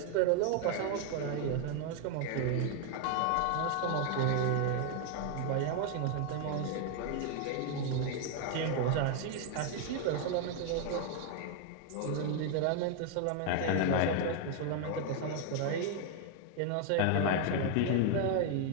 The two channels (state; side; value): different; both; correlation 0.00